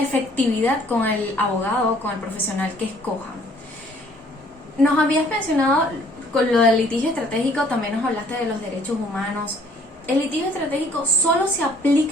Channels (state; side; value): normal; both; correlation 0.59